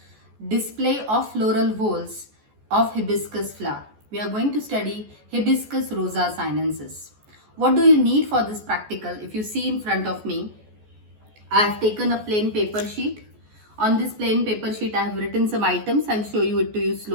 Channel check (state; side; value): late; left; 14 ms